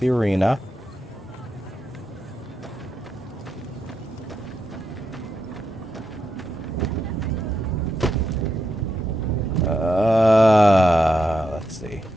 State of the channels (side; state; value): both; normal; correlation 0.84